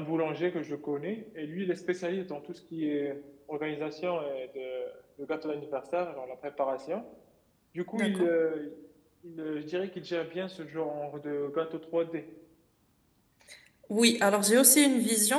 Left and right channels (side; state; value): both; identical; correlation 1.00